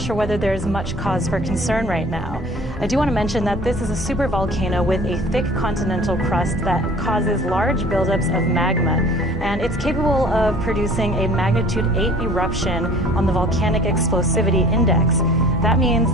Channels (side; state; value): both; normal; correlation 0.48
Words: whether there's much cause for concern right now. I do want to mention that this is a supervolcano with a thick continental crust that causes large buildups of magma, and it's capable of producing a magnitude 8 eruption on the volcanic explosivity index. That means